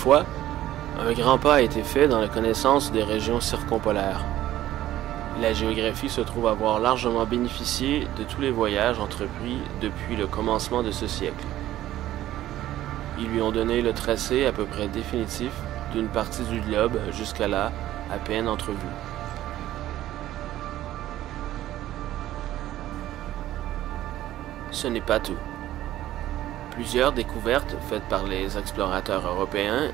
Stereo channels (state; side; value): quieter; left; 13.9 dB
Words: un grand pas a été fait dans la connaissance des régions circumpolaires. La géographie se trouve avoir largement bénéficié de tous les voyages entrepris depuis le commencement de ce siècle. Ils lui ont donné le tracé à peu près définitif d'une partie du globe jusqu'à là à peine entrevue. Ce n'est pas tout. Plusieurs découvertes faites par les explorateurs européens